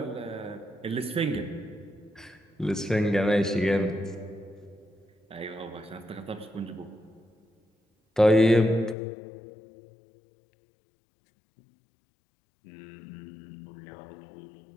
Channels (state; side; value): drops out; right; at 9.0 s